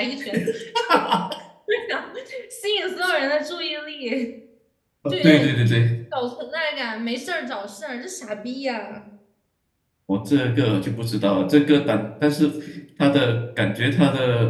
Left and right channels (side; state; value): both; identical; correlation 1.00